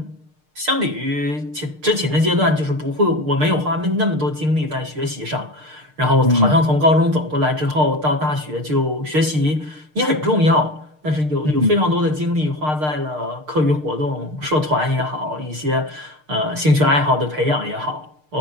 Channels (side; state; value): left; late; 6.6 ms